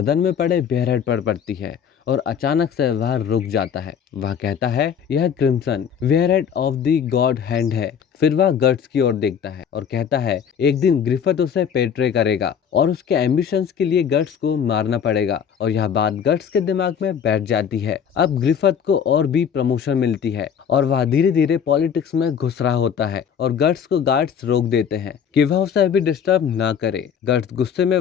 में पड़े बेयरहेड पर पड़ती है और अचानक से वह रुक जाता है। वह कहता है यह crimson warhead of the God hand है। फिर वह गट्स की ओर देखता है और कहता है एक दिन ग्रिफिथ उसे पेट्रे करेगा और उसके एम्बिशंस के लिए गट्स को मारना पड़ेगा। और यह बात गट्स के दिमाग में बैठ जाती है। अब ग्रिफिथ को और भी प्रमोशन मिलती है और वह धीरे धीरे पॉलिटिक्स में घुस रहा होता है और गट्स को गार्ड्स रोक देते हैं कि वह उसे अभी डिस्टर्ब ना करे। गट्स गुस्से में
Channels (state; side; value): quieter; right; 7.7 dB